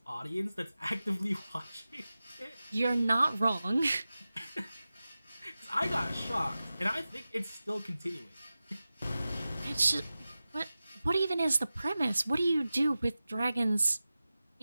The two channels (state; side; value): inverted; both; correlation -0.95